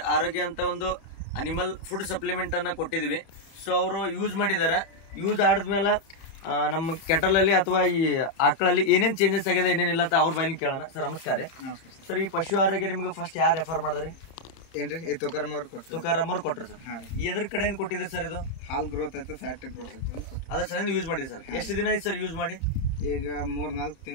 ಆರೋಗ್ಯ ಅಂತ ಒಂದು ಅನಿಮಲ್ ಫುಡ್ ಸಪ್ಲಿಮೆಂಟನ್ನು ಕೊಟ್ಟಿದ್ದೀವಿ. ಸೊ ಅವರು ಯೂಸ್ ಮಾಡಿದ್ದಾರೆ. ಯೂಸ್ ಆಡಿದ್ಮೇಲೆ ನಮ್ಮ ಕೆಟಲಲ್ಲಿ ಅಥವಾ ಈ ಆಕಳಲ್ಲಿ ಏನೇನು ಚೇಂಜಸ್ ಆಗಿದೆ ಏನೇನಿಲ್ಲ ಅಂತ ಅವ್ರ ಬಾಯಲ್ಲಿ ಕೇಳೋಣ. ಸರ್ ನಮಸ್ಕಾರ. ಸರ್ ಈ ಪಶು ಆರೋಗ್ಯ ನಿಮಗೆ ಫಸ್ಟ್ ಯಾರು ರೆಫರ್ ಮಾಡಿದ್ರಿ? ಏನ್ರಿ ತುಕಾರಾಮ್ ಅವ್ರು ಕೊಟ್ಟರು. ತುಕಾರಾಮ್ ಅವ್ರು ಕೊಟ್ಟರು ಸರ್. ಎದ್ರ ಕಡೆ ಏನು ಕೊಟ್ಟಿದ್ರಿ ಸರ್? ಇದು ಹಾಲ್ ಗ್ರೋತ್ ಆಯ್ತು, ಫ್ಯಾಟ್ ಗ್ರೋತ್ ಆಯ್ತು ಅದ್ರ ಸಲ ಯೂಸ್ ಮಾಡಿದ್ರಿ ಸರ್. ಎಷ್ಟು ದಿನ ಆಯ್ತು ಸರ್ ಯೂಸ್ ಮಾಡಿ? ಈಗ 3-4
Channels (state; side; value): late; right; 31 ms